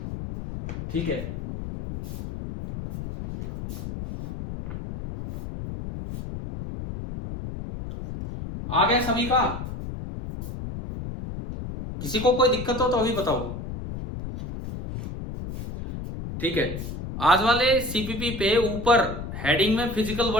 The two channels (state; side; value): noise; left; rumble, 8 dB below the sound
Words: ठीक है, आ गया सभी का? किसी को कोई दिक्कत हो तो अभी बताओ। ठीक है, आज वाले सीपीपी पे ऊपर हेडिंग में फिजिकल